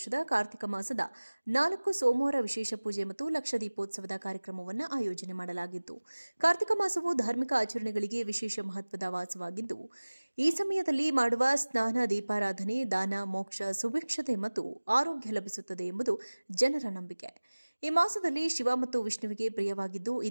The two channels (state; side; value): inverted; both; correlation -1.00